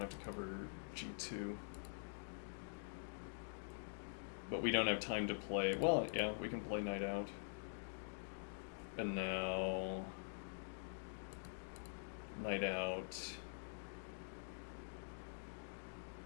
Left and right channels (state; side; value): silent; right; digital silence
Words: to cover g2. But we don't have time to play... Well, yeah, we can play knight out. And now... Knight out...